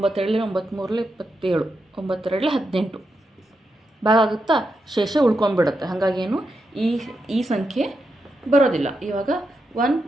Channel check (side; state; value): both; normal; correlation 0.85